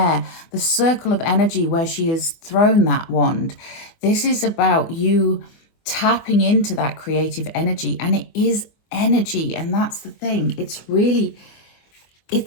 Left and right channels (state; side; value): late; right; 24 ms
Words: the circle of energy where she has thrown that wand. This is about you tapping into that creative energy, and it is energy, and that's the thing. It's